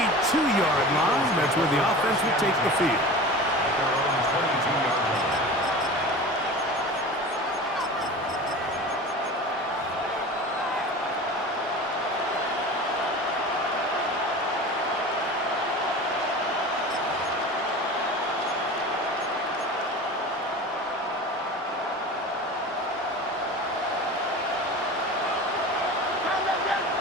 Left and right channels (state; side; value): normal; both; correlation 0.34